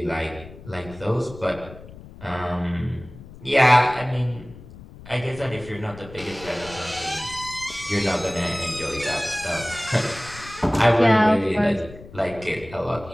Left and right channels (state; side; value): noise; left; rumble, 17 dB below the sound